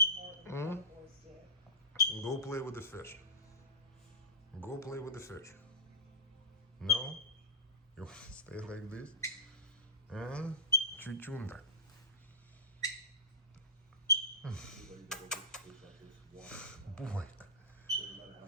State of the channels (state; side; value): normal; both; correlation -0.19